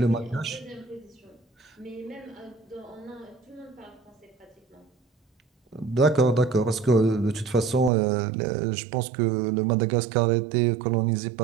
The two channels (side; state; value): left; drops out; at 7.9 s